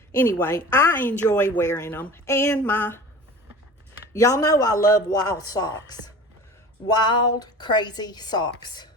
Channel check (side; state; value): both; normal; correlation 0.38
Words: Anyway, I enjoy wearing them. And y'all know I love wild socks. Wild, crazy socks.